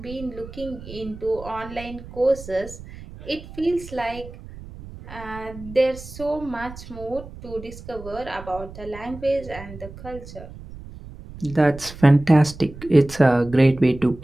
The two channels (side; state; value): right; noise; rumble, 15 dB below the sound